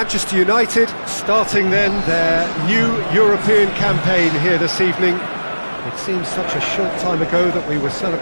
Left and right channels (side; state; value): both; inverted; correlation -1.00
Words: United starting then their new European campaign here this evening. It seems such a short time ago that we were